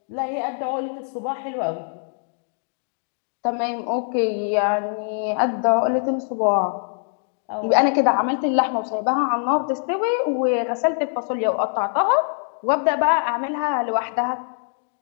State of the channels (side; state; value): right; silent; 62 dB below the other